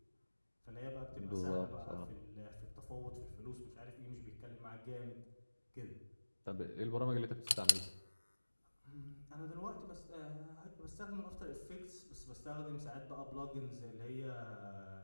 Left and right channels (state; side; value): inverted; both; correlation -1.00